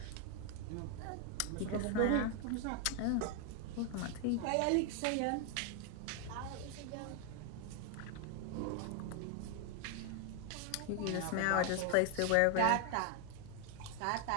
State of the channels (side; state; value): both; different; correlation 0.00